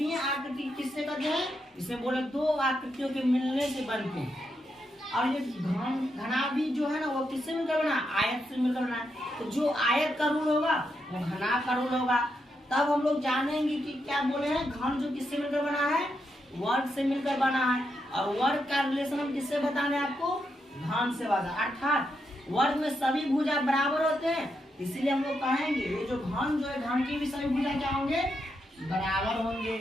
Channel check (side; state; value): both; normal; correlation 0.82